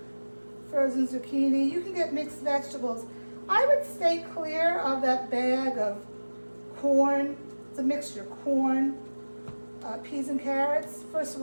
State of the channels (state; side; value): inverted; both; correlation -1.00